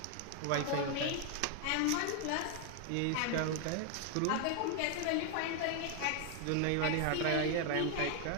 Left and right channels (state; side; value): different; both; correlation 0.00